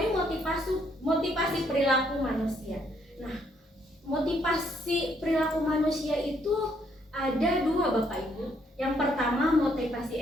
motivasi perilaku manusia. Nah, motivasi perilaku manusia itu ada dua Bapak Ibu. Yang pertama motivasi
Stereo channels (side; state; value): both; normal; correlation 0.70